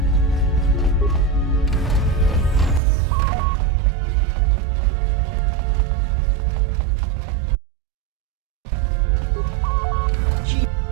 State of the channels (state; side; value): drops out; left; at 2.8 s